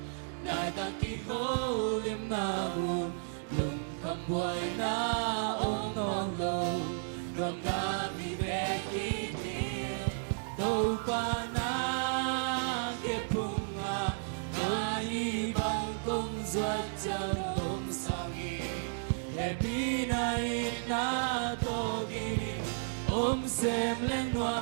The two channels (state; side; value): silent; left; digital silence